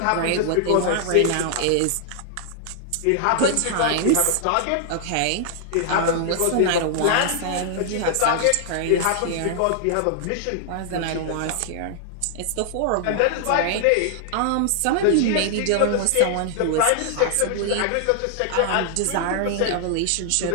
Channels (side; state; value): both; different; correlation 0.00